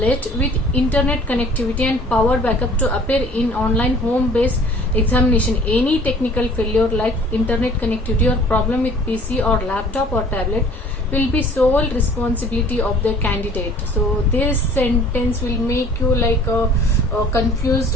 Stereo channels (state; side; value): normal; both; correlation 0.51